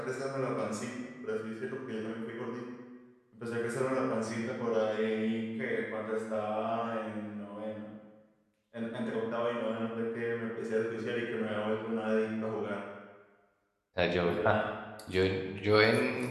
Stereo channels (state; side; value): identical; both; correlation 1.00